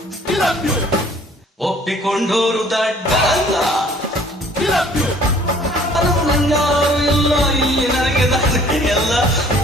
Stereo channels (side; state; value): both; normal; correlation 0.55